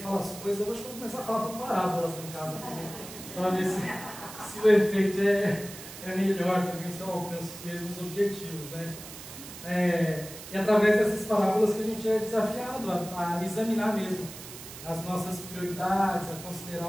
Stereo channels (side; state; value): right; noise; hiss, 13 dB below the sound